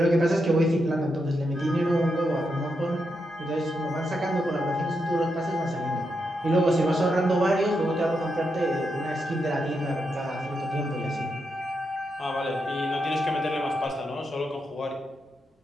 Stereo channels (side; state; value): both; normal; correlation 0.84